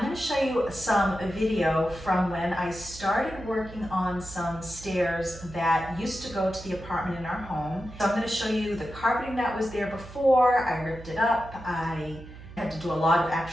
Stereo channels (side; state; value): right; noise; hum, 15 dB below the sound